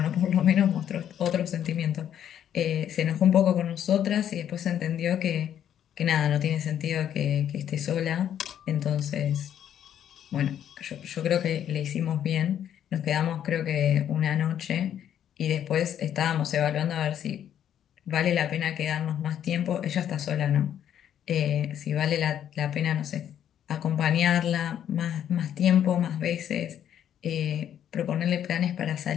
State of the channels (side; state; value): right; quieter; 10.0 dB